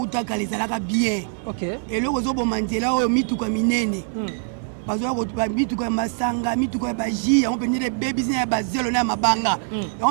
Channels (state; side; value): silent; left; digital silence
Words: ezalaka bien. OK. Eloko zoboma nzela oyo mituka minene. Bazo ko mituka masanga, mituka ba ji, on peut dire babies na bazelo na mabanga.